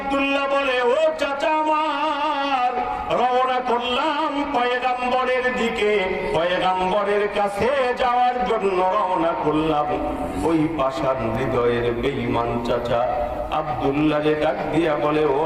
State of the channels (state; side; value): identical; both; correlation 1.00